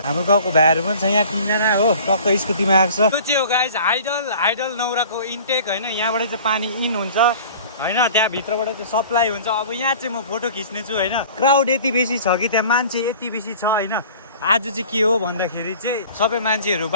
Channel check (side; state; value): both; inverted; correlation -0.46